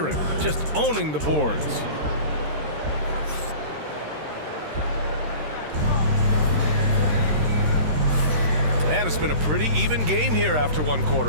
just owning the boards. And it's been a pretty even game here after 1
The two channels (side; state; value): left; late; 13 ms